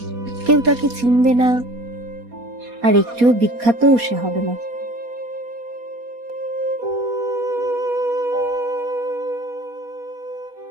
কেউ তাকে চিনবে না, আর একটুও বিখ্যাতও সে হবে না।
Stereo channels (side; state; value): left; late; 4.2 ms